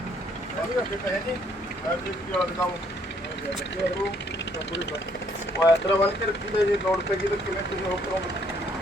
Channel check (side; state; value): both; normal; correlation 0.67